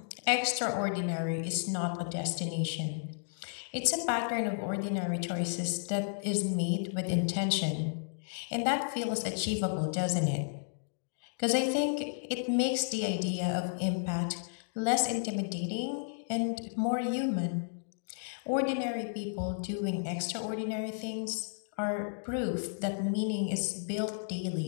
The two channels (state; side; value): silent; right; digital silence